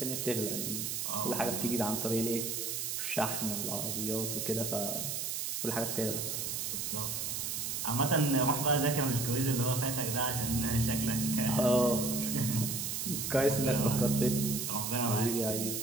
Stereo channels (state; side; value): noise; right; hiss, 2 dB below the sound